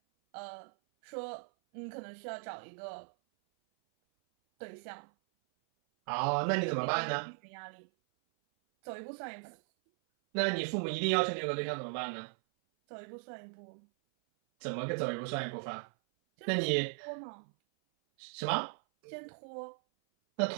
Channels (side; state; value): left; silent; 53 dB below the other